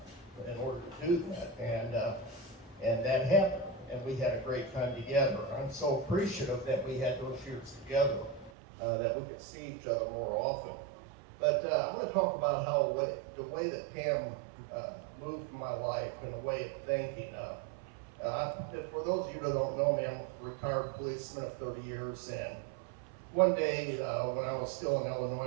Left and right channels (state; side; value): drops out; left; at 8.5 s